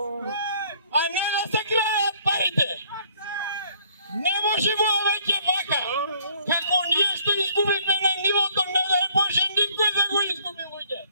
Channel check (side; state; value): both; inverted; correlation -0.61